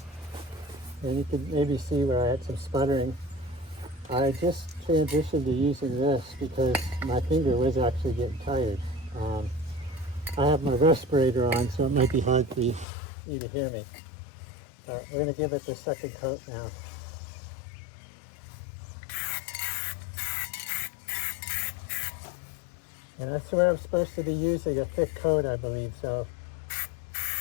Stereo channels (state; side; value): drops out; right; at 12.9 s